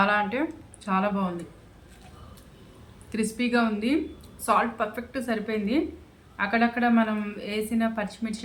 అంటే చాలా బాగుంది. క్రిస్పీగా ఉంది. సాల్ట్ పర్ఫెక్ట్ సరిపోయింది. అక్కడక్కడ మనం వేసిన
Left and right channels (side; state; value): both; identical; correlation 1.00